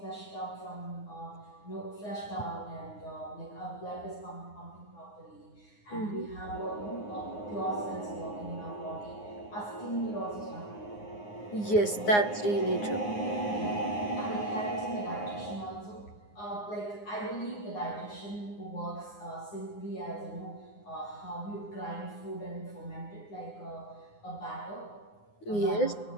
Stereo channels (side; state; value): right; late; 9.7 ms